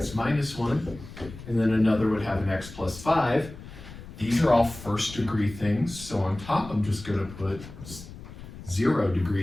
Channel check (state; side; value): noise; left; rumble, 15 dB below the sound